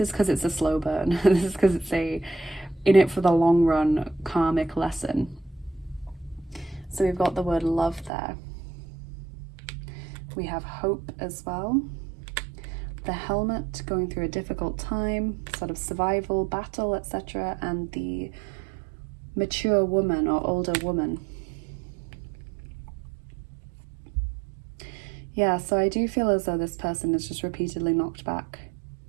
because it's a slow burn. This is because it's a in it for the long run karmic lesson. So we've got the word love there. We have hope as well. The helmet, going through a difficult time, sort of survival, battle, etc. And the mature woman or older woman. Yeah, so I do feel as though this person is just repeatedly knocked back.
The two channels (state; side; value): drops out; left; at 8.1 s